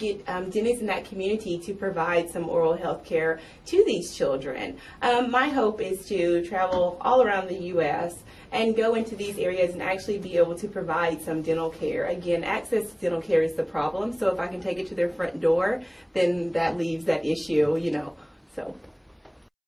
dentists in that community to provide some oral health care to these children. My hope is to travel all around the U.S. and go into these areas and actually be able to provide some dental care. Again, access to dental care is the problem, so if I can take it to their front door, then that leaves that issue, so.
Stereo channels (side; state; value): both; identical; correlation 1.00